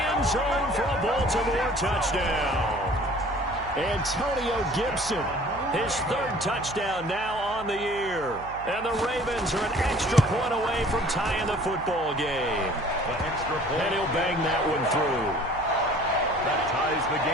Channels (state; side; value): noise; right; hum, 17 dB below the sound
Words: end zone for a Baltimore touchdown. Antonio Gibson, his 3rd touchdown now on the year. And the Ravens are an extra point away from tying the football game. And he'll bang that one through. That ties the